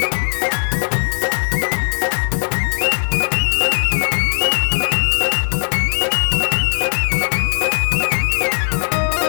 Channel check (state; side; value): silent; right; 55 dB below the other